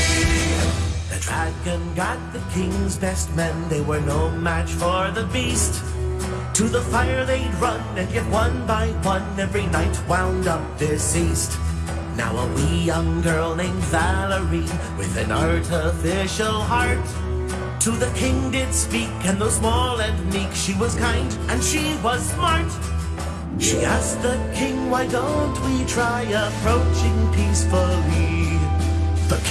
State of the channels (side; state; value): both; identical; correlation 1.00